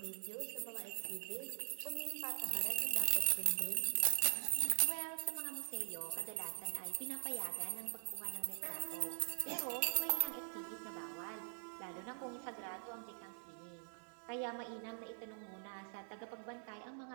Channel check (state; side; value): silent; left; digital silence